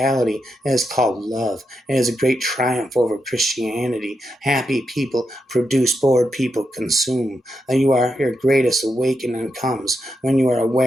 is called love. It is a great triumph over Christianity. Happy people produce, bored people consume. Your greatest awakening comes when you are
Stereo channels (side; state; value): both; normal; correlation 0.85